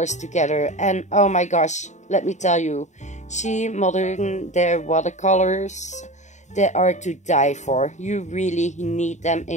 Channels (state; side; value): late; right; 0.34 ms